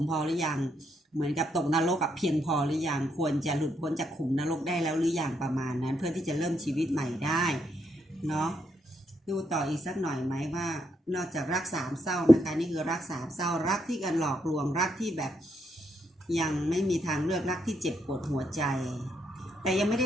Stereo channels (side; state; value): both; normal; correlation 0.77